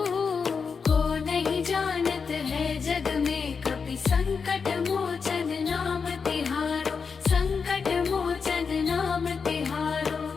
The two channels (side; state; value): right; quieter; 5.5 dB